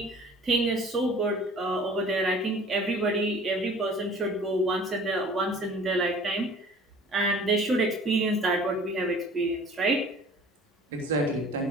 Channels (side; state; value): both; normal; correlation 0.47